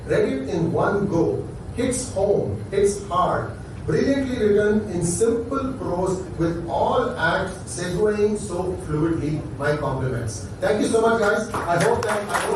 Read it in one go. Hits home, hits hard. Brilliantly written in simple prose with all acts segueing so fluidly. My compliments. Thank you so much, guys. I hope that I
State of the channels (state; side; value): identical; both; correlation 1.00